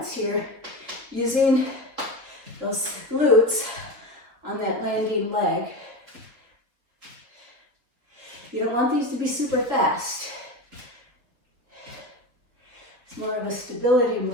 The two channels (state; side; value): late; left; 3.7 ms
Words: here, using those glutes on that landing leg. You don't want these to be super fast. It's more of a stability